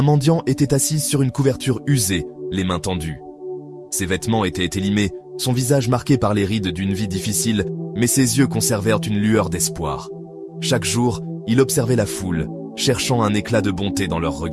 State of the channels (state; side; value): identical; both; correlation 1.00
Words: mendiant était assis sur une couverture usée, les mains tendues. Ses vêtements étaient élimés, son visage marqué par les rides d'une vie difficile, mais ses yeux conservèrent une lueur d'espoir. Chaque jour, il observait la foule, cherchant un éclat de bonté dans leurs